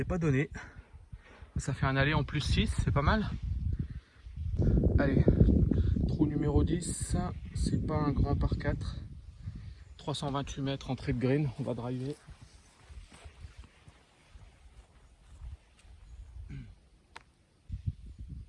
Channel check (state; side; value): identical; both; correlation 1.00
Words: pas donné. Ça fait un aller en plus 6, c'est pas mal. Allez, trou numéro 10, c'est pas un grand par 4. 328 mètres entrée de green, on va driver.